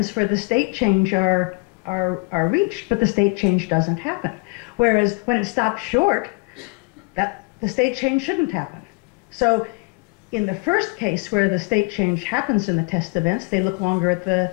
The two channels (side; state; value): right; quieter; 31.0 dB